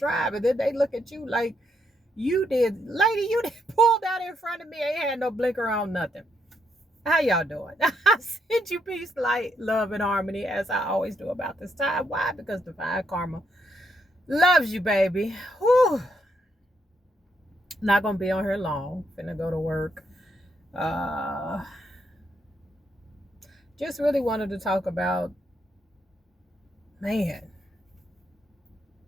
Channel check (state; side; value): normal; both; correlation 0.77